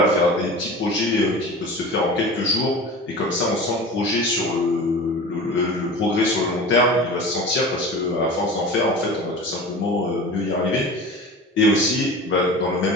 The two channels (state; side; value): normal; both; correlation 0.35